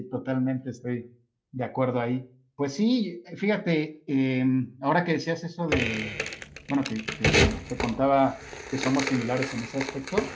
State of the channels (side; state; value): both; identical; correlation 1.00